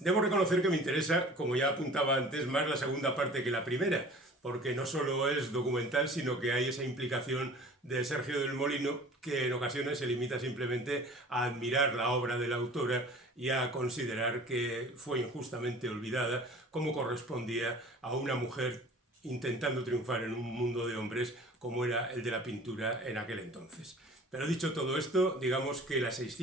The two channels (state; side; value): normal; both; correlation 0.45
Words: reconocer que me interesa, como ya apuntaba antes, más la segunda parte que la primera, porque no solo es documental, sino que hay esa implicación de Sergio del Molino que en ocasiones se limita simplemente a admirar la obra de la autora y a considerar que fue injustamente olvidada, como correspondía a una mujer intentando triunfar en un mundo de hombres como era el de la pintura en aquel entonces. Pero dicho todo esto, digamos que las